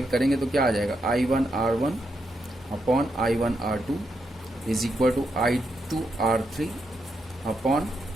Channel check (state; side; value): normal; both; correlation 0.82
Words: करेंगे तो क्या आ जाएगा, I1R1 upon I1R2 is equal to I2R3 upon